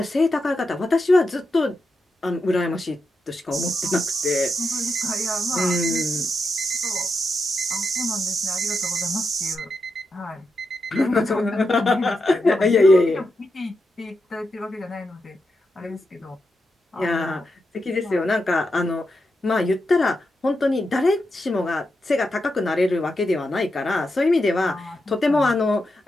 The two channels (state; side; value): normal; both; correlation 0.86